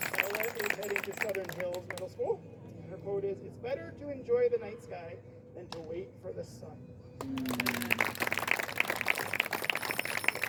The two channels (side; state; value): both; identical; correlation 1.00